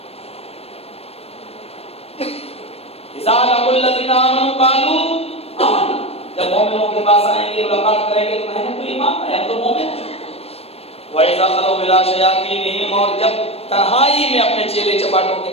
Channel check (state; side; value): late; right; 0.29 ms